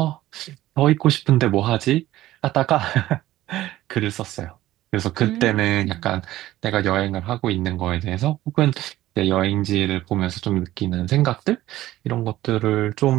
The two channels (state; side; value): quieter; left; 15.3 dB